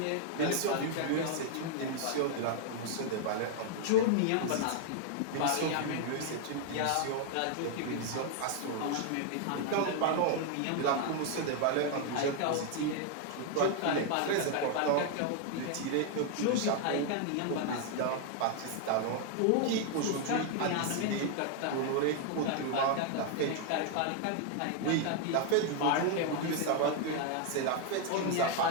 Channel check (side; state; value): both; different; correlation 0.00